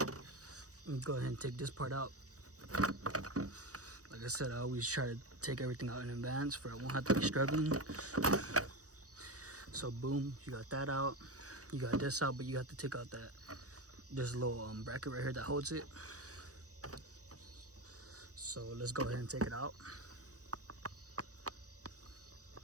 And go ahead and take this part out. Like I said, I always try to take everything out in advance for I won't have to be struggling. So boom, you got that out. You got this out, but you have to take out that, there's a little bracket right here that holds it. So let's go ahead and take it out.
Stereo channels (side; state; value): left; late; 0.66 ms